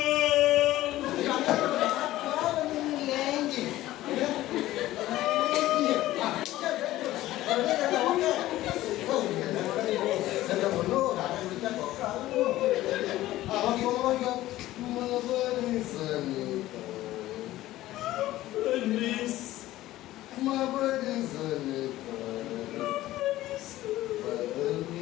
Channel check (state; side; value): quieter; right; 15.6 dB